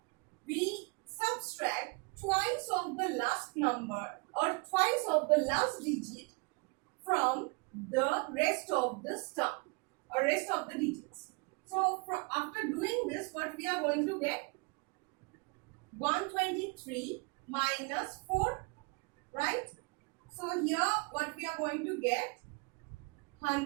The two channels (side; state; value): left; quieter; 31.0 dB